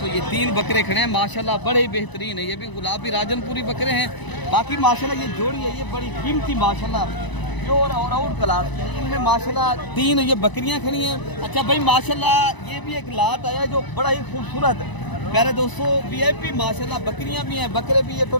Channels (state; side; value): late; right; 1.0 ms